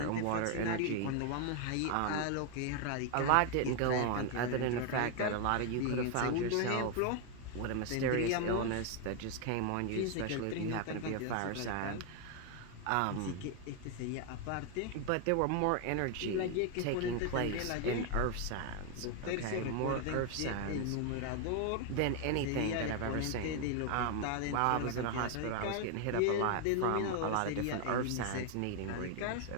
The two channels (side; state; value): both; different; correlation 0.01